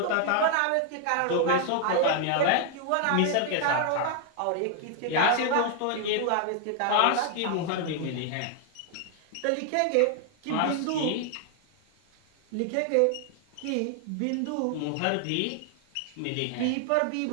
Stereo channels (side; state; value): both; different; correlation 0.00